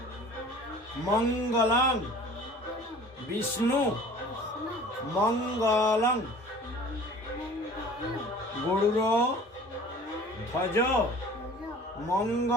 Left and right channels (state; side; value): normal; both; correlation 0.46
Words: মঙ্গলং বিষ্ণু মঙ্গলং গরুর ধ্বজ